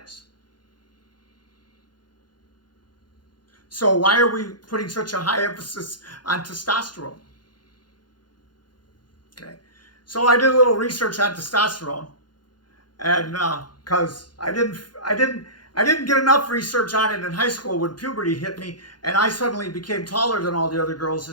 So why are we putting such a high emphasis on testosterone? Okay. So I did a little research on testosterone, and because I didn't get enough research on it in high school when puberty hit me, and I suddenly became taller than all the other girls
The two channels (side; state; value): right; late; 0.71 ms